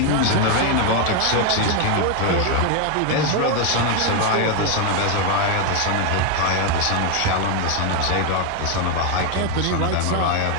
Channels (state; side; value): different; both; correlation 0.01